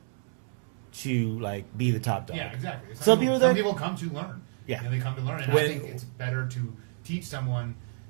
to like be the top dog. Yeah, exactly. Some people come to learn. Yeah. They come to learn, and I Yeah. think it's better to teach someone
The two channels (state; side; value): silent; left; 59 dB below the other